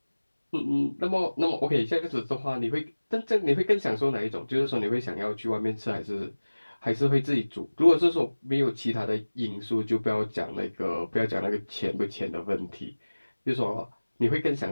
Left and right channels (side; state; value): both; inverted; correlation -1.00